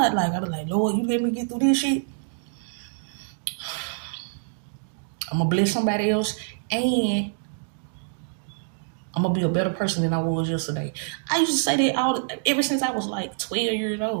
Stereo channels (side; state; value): left; silent; digital silence